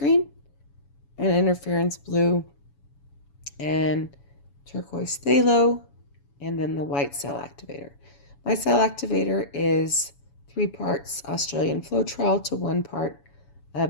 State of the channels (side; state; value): right; late; 7.1 ms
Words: and Interference Blue, and Turquoise Phthalo, and then the white cell activator. My cell activator is 3 parts Australian Floetrol to 1 part